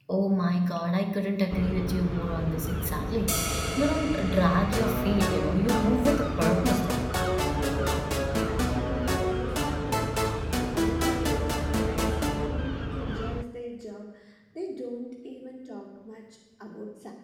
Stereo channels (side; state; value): both; identical; correlation 1.00